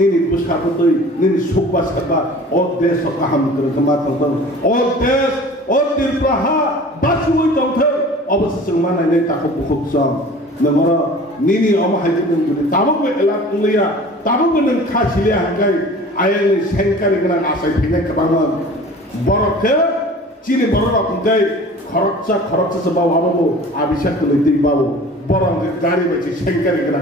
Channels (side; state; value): both; normal; correlation 0.43